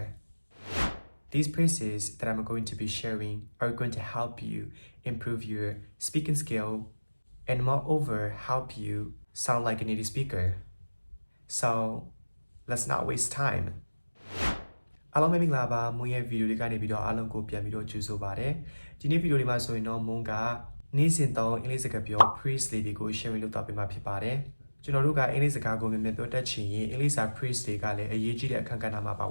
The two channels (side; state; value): both; inverted; correlation -1.00